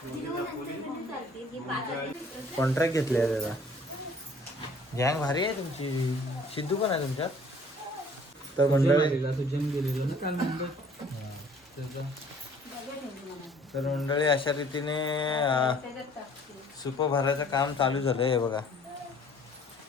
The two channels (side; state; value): both; normal; correlation 0.55